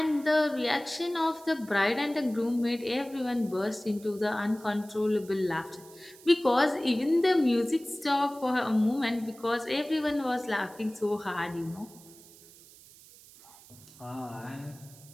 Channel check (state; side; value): noise; right; hiss, 22 dB below the sound